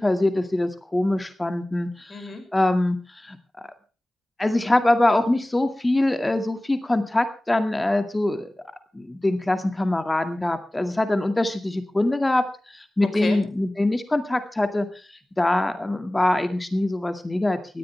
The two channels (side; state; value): both; normal; correlation 0.98